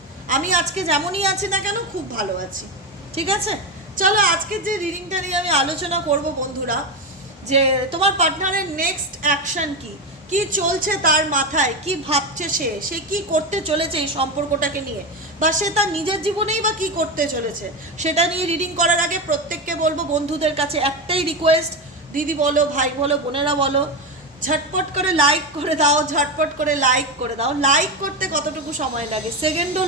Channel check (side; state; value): both; normal; correlation 0.15